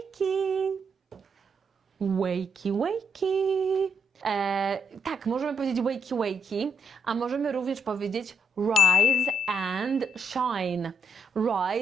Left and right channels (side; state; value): both; normal; correlation 0.75